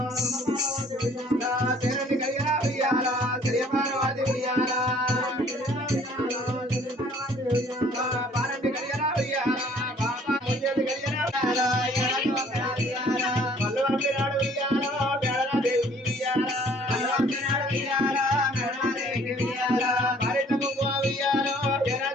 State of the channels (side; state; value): both; normal; correlation 0.56